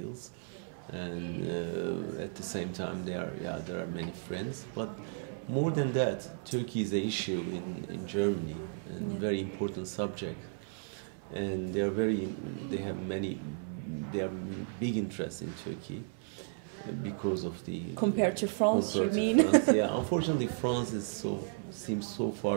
And at the same time, there are many friends. But more than that, Turkey is an issue in Germany, and very important subject. And they have big interest in Turkey. because of the compared to France, compared you to mean? France, yeah. Unfortunately, France seems so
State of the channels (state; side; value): silent; left; 55 dB below the other